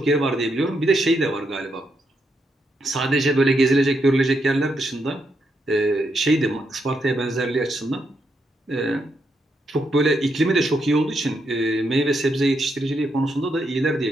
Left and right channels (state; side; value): normal; both; correlation 0.80